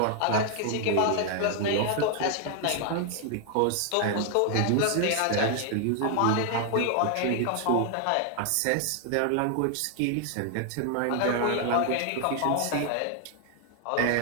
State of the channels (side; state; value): both; different; correlation 0.00